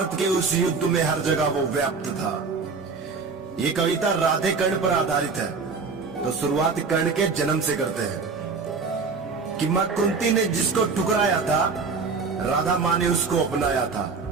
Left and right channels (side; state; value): left; quieter; 4.8 dB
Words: के उस युद्ध में हर जगह वो व्याप्त था। ये कविता राधे कर्ण पर आधारित है। तो शुरुआत कर्ण के जन्म से करते हैं कि मां कुंती ने जिसको ठुकराया था, राधा मां ने उसको अपनाया था।